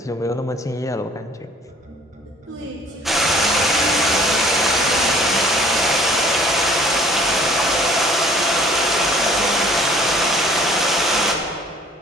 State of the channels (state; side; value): normal; both; correlation 0.55